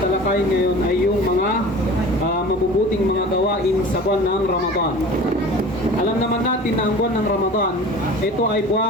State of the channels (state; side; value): normal; both; correlation 0.40